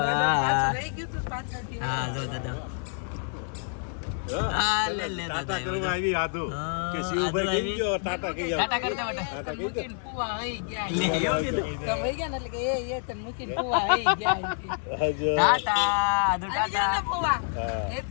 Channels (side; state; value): right; silent; 60 dB below the other